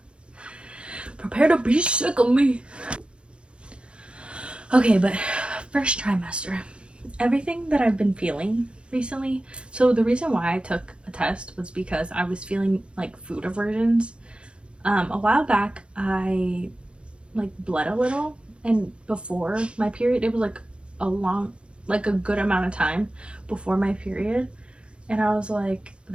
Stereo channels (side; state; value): left; late; 0.057 ms